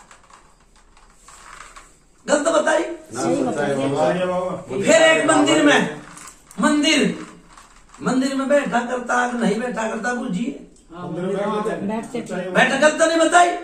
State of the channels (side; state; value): both; identical; correlation 1.00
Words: गलत बताई। ना सच्चाई बाबा। सही है बाबा। फिर एक मंदिर में बैठा करता कि नहीं बैठा करता बूझिए, बैठते थे। बैठा करता नहीं बताई।